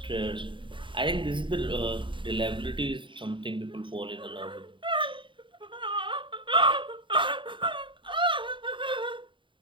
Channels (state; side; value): late; left; 0.24 ms